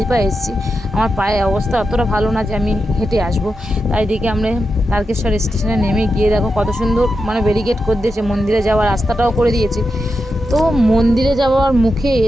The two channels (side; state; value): both; normal; correlation 0.88